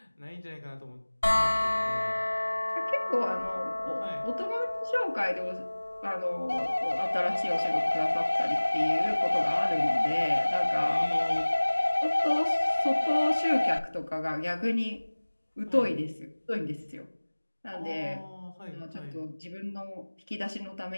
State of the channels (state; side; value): inverted; both; correlation -1.00